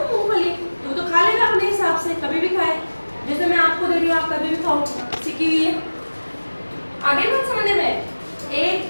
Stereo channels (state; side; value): inverted; both; correlation -1.00